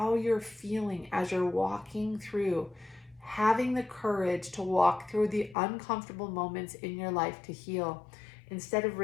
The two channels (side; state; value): right; drops out; at 5.6 s